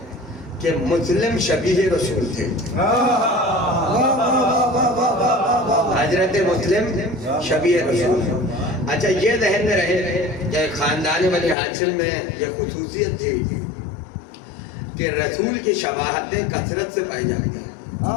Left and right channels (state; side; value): drops out; right; at 11.6 s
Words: کہ مسلم شبیہ رسول تھے. حضرت مسلم شبیہ رسول. اچھا یہ ذہن میں رہے کہ خاندان بنی ہاشم میں یہ خصوصیت تھی کہ رسول کی شباہتیں کثرت سے پائی جاتی ہیں.